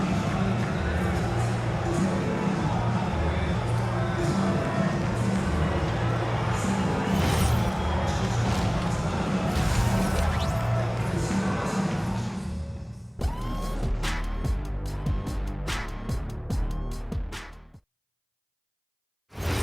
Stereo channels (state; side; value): identical; both; correlation 1.00